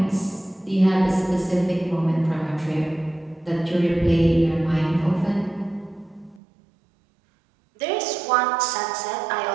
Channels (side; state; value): left; drops out; at 6.4 s